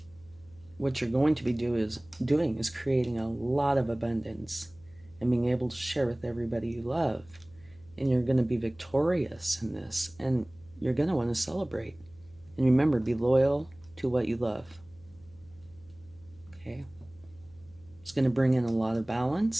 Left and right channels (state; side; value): noise; left; hum, 26 dB below the sound